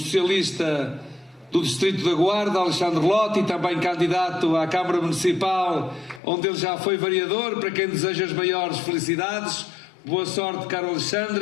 do Distrito da Guarda, Alexandre Lotti, também candidato à Câmara Municipal, onde ele já foi vereador, para quem deseja as maiores felicidades. Boa sorte, caro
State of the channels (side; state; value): right; drops out; at 6.2 s